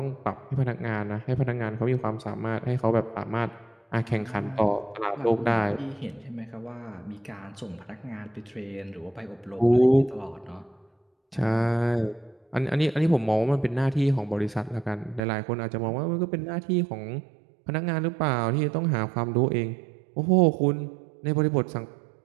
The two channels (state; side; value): drops out; left; at 15.2 s